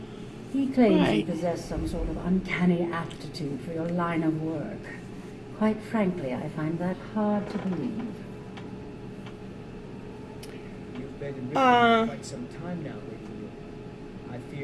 He claims you Right. possess some sort of uncanny aptitude for your line of work. Quite frankly, I find that hard to believe. You've been in Riften Uh. for quite some time now, Lady Yu. I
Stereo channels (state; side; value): identical; both; correlation 1.00